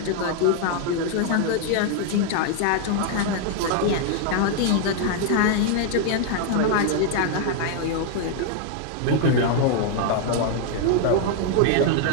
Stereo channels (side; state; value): both; different; correlation 0.00